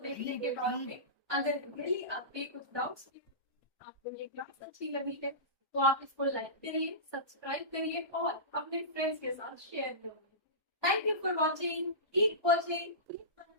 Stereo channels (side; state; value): left; late; 1.2 ms